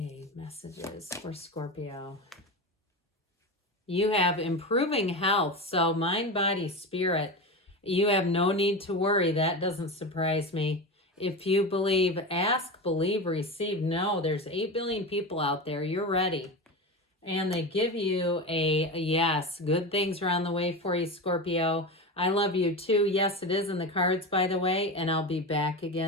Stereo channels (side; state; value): both; normal; correlation 0.23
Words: messages for Scorpio. You have improving health, so mind, body, spirit. You have no need to worry. That doesn't surprise me. If you believe, ask, believe, receive. No, there's 8 billion people out there. You're ready. And they give you a yes. Good things are on the way for you, Scorpio. I love you too. Yes, it is in the cards, by the way, and I'll be back